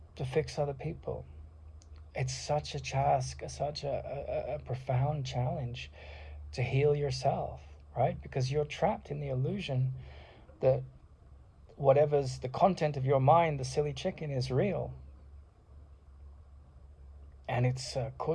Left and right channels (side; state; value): both; identical; correlation 1.00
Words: to fix other people. It's such a task, such a profound challenge to heal yourself, right? Because you're trapped in the illusion that whatever's the content of your mind, the silly chicken, is real. And it's